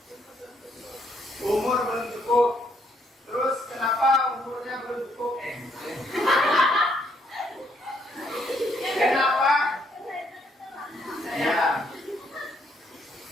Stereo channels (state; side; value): normal; both; correlation 0.71